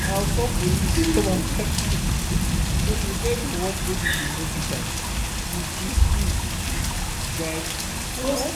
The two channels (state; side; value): identical; both; correlation 1.00